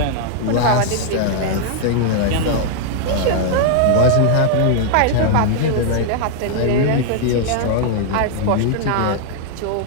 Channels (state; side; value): different; both; correlation 0.00